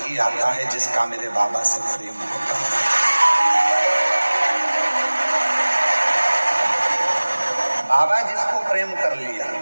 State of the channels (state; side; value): inverted; both; correlation -1.00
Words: आता है जिसका मेरे बाबा से प्रेम होता है। बाबा जिसको प्रेम कर लिया,